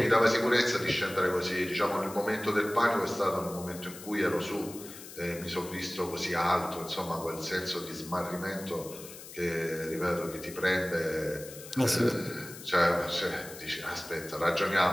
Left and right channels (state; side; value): noise; left; hiss, 15 dB below the sound